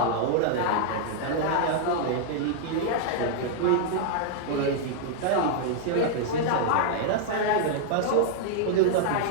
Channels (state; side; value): different; both; correlation -0.01